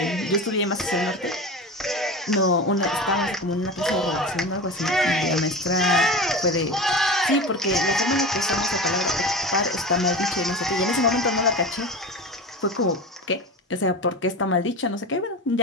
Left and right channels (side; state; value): both; normal; correlation 0.28